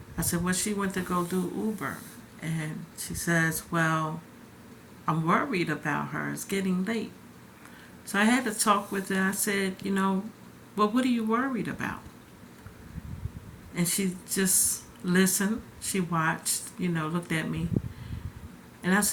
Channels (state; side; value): identical; both; correlation 1.00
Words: I said, well, she went to go do Uber. And she says, well, I'm worried about her. It's getting late. So I had to talk with her. I said, well, what are you worried about? And she just listened. She watched, looked at me. And I